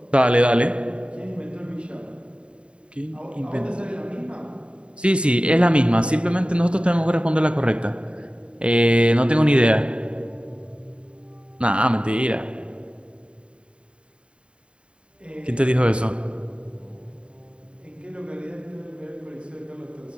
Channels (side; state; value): left; late; 0.055 ms